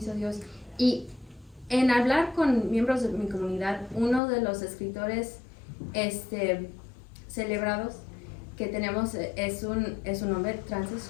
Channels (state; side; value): drops out; right; at 4.2 s